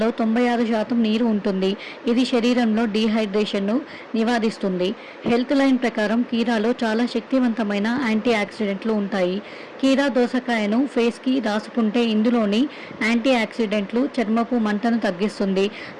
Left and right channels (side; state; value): both; identical; correlation 1.00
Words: 96% నీరు ఉంటుంది. ఇది శరీరంలో డీహైడ్రేషన్ను నివారిస్తుంది. హెల్త్ లైన్ ప్రకారం కీరాలో చాలా శక్తివంతమైన యాంటీ ఆక్సిడెంట్లు ఉంటాయి. కీరా దోసకాయను ఫేస్కి రాసుకుంటే ఇందులోని యాంటీ ఆక్సిడెంట్లు చర్మపు మంటను తగ్గిస్తుంది,